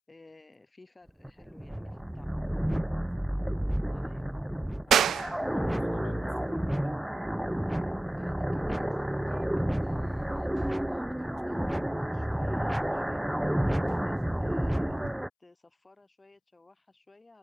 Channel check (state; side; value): normal; both; correlation 0.95